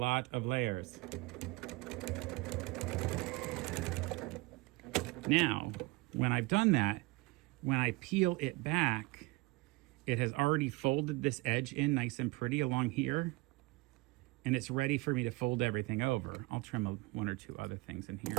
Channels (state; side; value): quieter; left; 22.6 dB